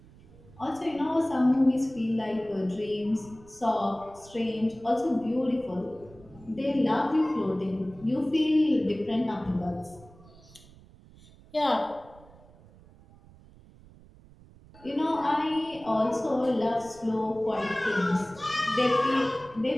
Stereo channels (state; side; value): noise; right; rumble, 23 dB below the sound